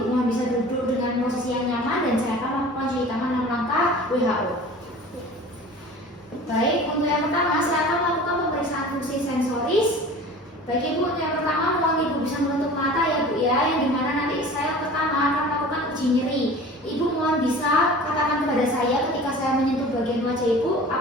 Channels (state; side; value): normal; both; correlation 0.41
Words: mohon bisa duduk dengan posisi yang nyaman, dan saya akan melakukan cuci tangan 6 langkah WHO. Baik, untuk yang pertama saya akan melakukan pemeriksaan fungsi sensoris. Baik Ibu, untuk yang pertama mohon Ibu bisa menutup mata ya Bu ya, yang dimana nanti saya pertama akan melakukan uji nyeri. Ibu mohon bisa katakan kepada saya ketika saya menyentuh bagian wajah Ibu,